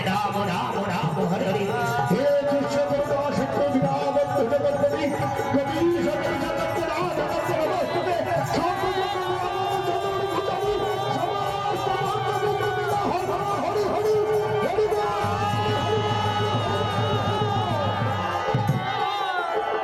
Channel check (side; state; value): both; identical; correlation 1.00